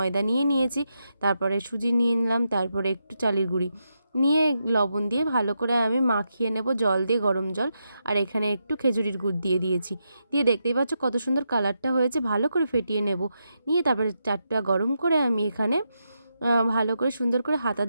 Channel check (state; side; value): inverted; both; correlation -0.84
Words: নিয়ে নিয়েছি, তারপরে সুজি নিয়ে নিলাম, তারপরে একটু চালের গুঁড়ি নিয়ে লবণ দিয়ে ভালো করে আমি মাখিয়ে নেব, জল দিয়ে, গরম জল। আর এখানে একটু খেজুরির গুড় দিয়ে দিয়েছি। দিয়ে দেখতেই পাচ্ছ কত সুন্দর কালারটা হয়েছে। ভালো করে ফেটিয়ে নেব, নিয়ে তারপরে চারটা গরম করে আমি এখানে ভালো করে সুন্দর করে হাতা